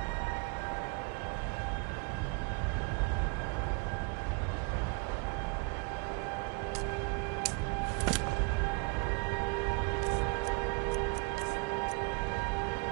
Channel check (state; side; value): quieter; left; 32.8 dB